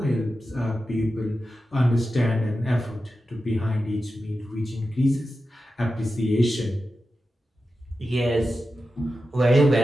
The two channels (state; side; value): normal; both; correlation 0.91